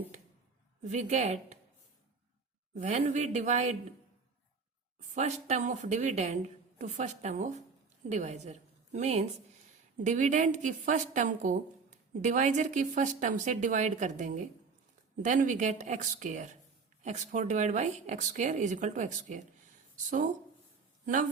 we get when we divide first term of dividend to first term of divisor, means dividend की first term को divisor की first term से divide कर देंगे, then we get x square. x4 divide by x square is equal to x square. So now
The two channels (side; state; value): left; quieter; 4.9 dB